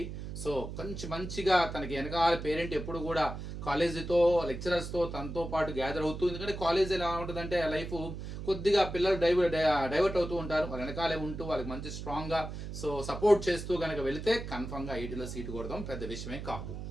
సో కొంచెం మంచిగా తనకి వెనకాల పేరెంట్ ఎప్పుడు కూడా కాలేజీతో, లెక్చరర్స్తో తనతో పాటు గ్యాదర్ అవుతూ, ఎందుకంటే కాలేజ్ ఎలా ఉంటుందంటే లైఫ్ కొద్దిగా పిల్లలు డైవర్ట్ అవుతూ ఉంటారు, వాళ్ళ వెనకాలే ఉంటూ వాళ్ళకి మంచి స్ట్రాంగ్గా సో సపోర్ట్ చేస్తూ కనుక వెళితే కన్ఫర్మ్గా ఐటీలో సీటు కొడదాం పెద్ద విషయమే కాదు,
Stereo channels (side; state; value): right; noise; hum, 8 dB below the sound